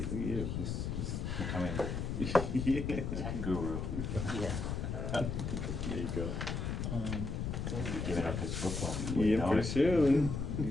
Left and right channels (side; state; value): left; noise; rumble, 2 dB below the sound